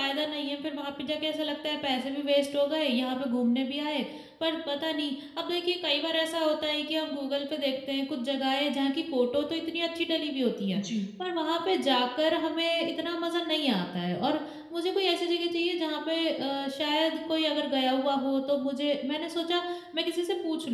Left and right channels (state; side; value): identical; both; correlation 1.00